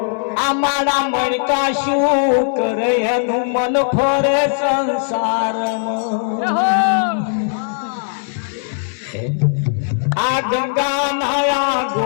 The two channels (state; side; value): silent; right; digital silence